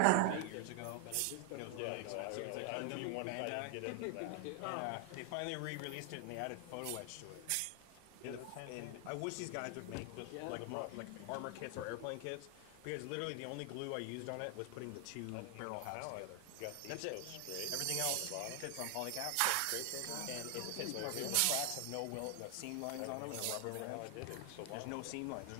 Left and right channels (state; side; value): different; both; correlation 0.00